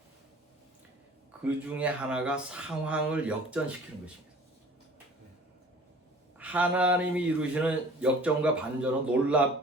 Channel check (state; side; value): normal; both; correlation 0.47